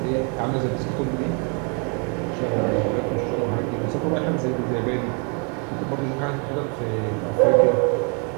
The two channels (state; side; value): quieter; left; 36.9 dB